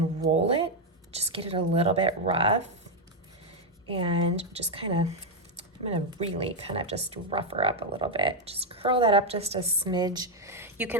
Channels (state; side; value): normal; both; correlation 0.02